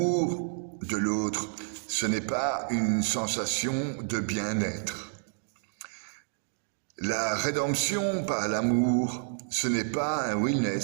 de l'autre, ce n'est pas une sensation de bien-être. La rédemption par l'amour, ce n'est pas un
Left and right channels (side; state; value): left; silent; digital silence